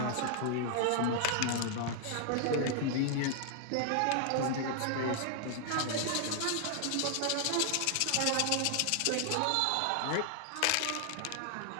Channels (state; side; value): different; both; correlation 0.00